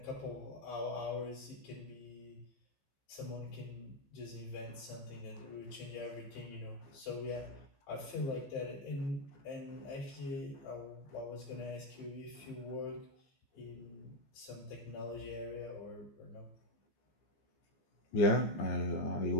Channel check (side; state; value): right; late; 14 ms